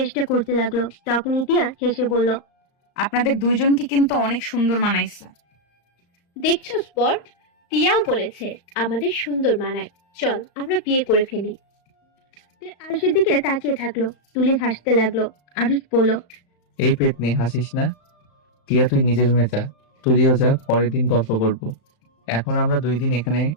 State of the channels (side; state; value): right; late; 35 ms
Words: করতে লাগলো। তখনই টিয়া হেসে বলল, আপনাদের দুইজনকে কিন্তু অনেক সুন্দর মানাইছে। দেখছো স্পট, টিয়াও বলেছে আমাদের সুন্দর মানায়, চল আমরা বিয়ে করে ফেলি। টিয়া আরুষের দিকে তাকিয়ে থাকলো। তুলি হাসতে লাগলো। আরুষ বলল, এই পেট নিয়ে হাসিস না। টিয়া, তুই নিজের রুমে যা। তুইও যা, পরের দিন গল্প করব। এখন আমরা 2 দিন এখানে